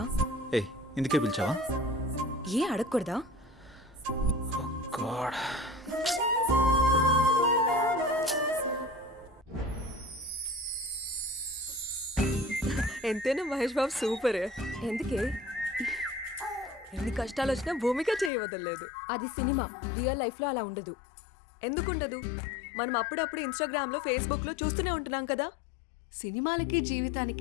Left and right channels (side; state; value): right; drops out; at 18.3 s